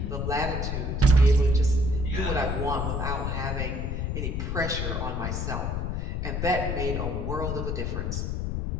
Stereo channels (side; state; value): left; noise; rumble, 1 dB below the sound